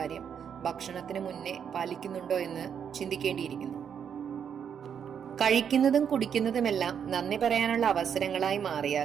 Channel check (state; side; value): quieter; left; 7.9 dB